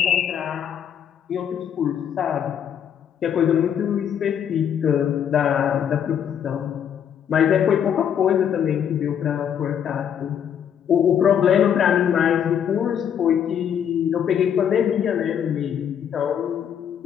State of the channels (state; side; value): quieter; right; 8.7 dB